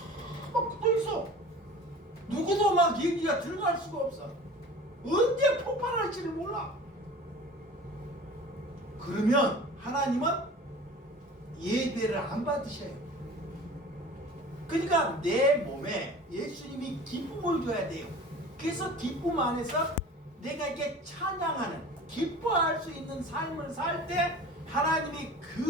막 묻어 있어. 누구도 막 얘기가 들어갈 수가 없어. 언제 폭발할지를 몰라. 그러면 하나님은 예배를 안 받으셔요. 그러니까 내 몸에 예수님이 기쁨을 줘야 돼요. 그래서 기쁨 안에서 내가 이게 찬양하는, 기뻐할 수 있는 삶을 살 때 하나님이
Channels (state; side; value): normal; both; correlation 0.41